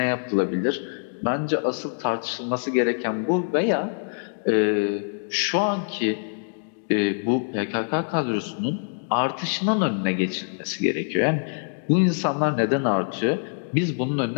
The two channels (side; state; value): right; silent; digital silence